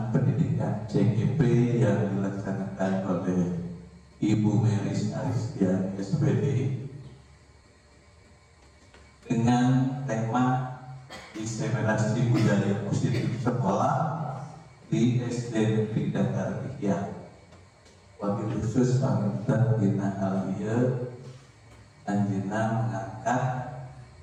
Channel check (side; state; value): both; identical; correlation 1.00